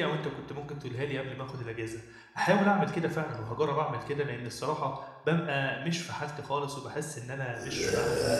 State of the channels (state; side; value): identical; both; correlation 1.00